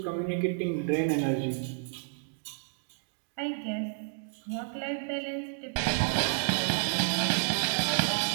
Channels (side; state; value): left; silent; digital silence